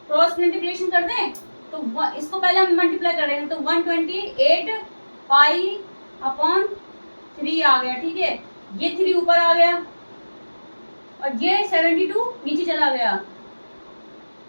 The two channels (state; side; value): inverted; both; correlation -1.00